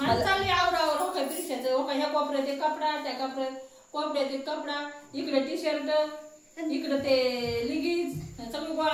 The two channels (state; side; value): identical; both; correlation 1.00